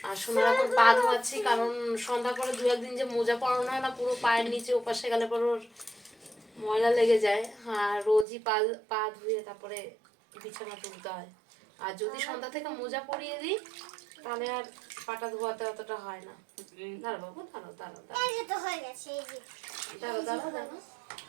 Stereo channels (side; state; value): left; drops out; at 8.2 s